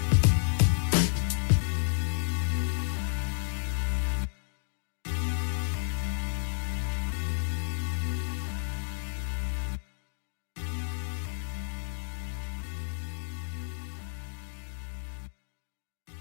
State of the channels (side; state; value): right; silent; digital silence